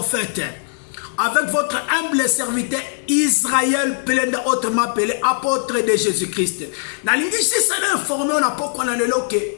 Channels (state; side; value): silent; right; 63 dB below the other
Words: Avec votre humble serviteur Israël, Pelenda, autrement appelé apôtre de Jésus-Christ.